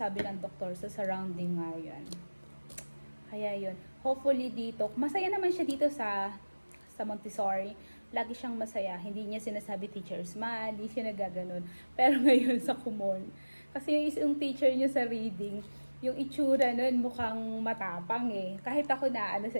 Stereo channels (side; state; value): both; inverted; correlation -1.00